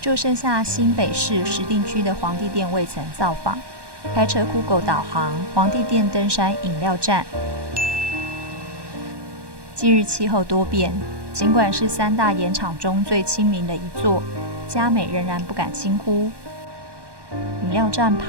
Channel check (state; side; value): late; left; 1.1 ms